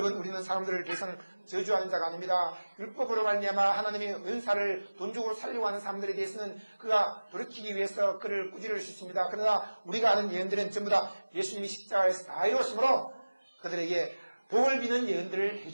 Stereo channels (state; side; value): inverted; both; correlation -1.00